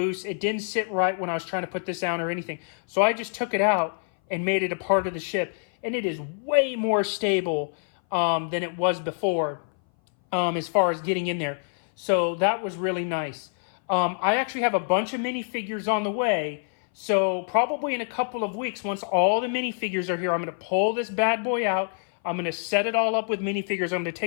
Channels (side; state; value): right; silent; 59 dB below the other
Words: It didn't sit right when I was trying to put this down or anything. So I just took it out and made it a part of the ship. And it is way more stable than it was before as far as getting in there. So that was really nice. I actually have a bunch of minifigures on the way So probably in a couple of weeks, once all the minifigures are here, I'm going to pull this bad boy out. I'm going to set it all up with minifigures. I'm going to